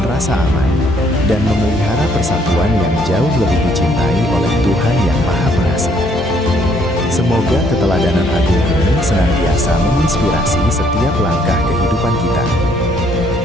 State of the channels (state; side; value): normal; both; correlation 0.66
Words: rasa aman, dan memelihara persatuan yang jauh lebih dicintai oleh Tuhan yang Maha Pengasih. Semoga keteladanan agung ini senantiasa menginspirasi setiap langkah kehidupan kita.